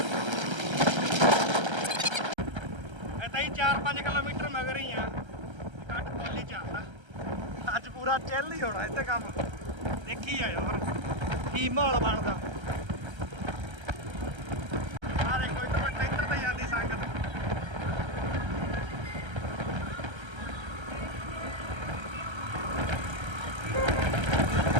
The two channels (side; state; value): left; late; 1.3 ms